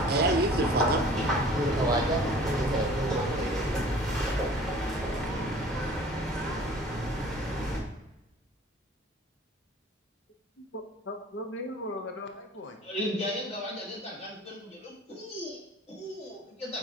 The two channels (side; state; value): both; normal; correlation 0.47